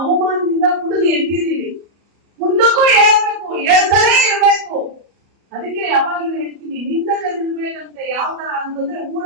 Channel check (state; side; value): late; left; 34 ms